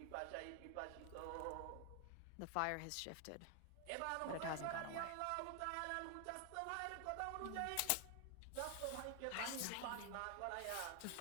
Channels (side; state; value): both; different; correlation 0.00